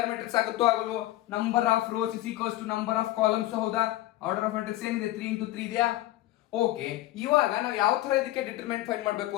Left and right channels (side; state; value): right; quieter; 16.0 dB